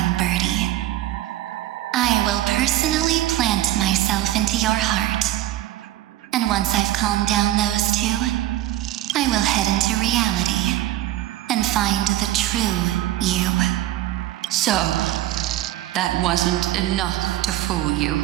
birdie. I will personally plant myself into your heart. And once I've calmed down those two, I will head into reality and find the true you. So, that wasn't enough to fool you.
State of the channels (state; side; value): quieter; left; 14.5 dB